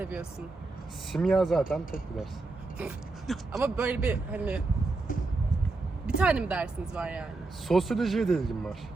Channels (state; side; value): quieter; left; 3.5 dB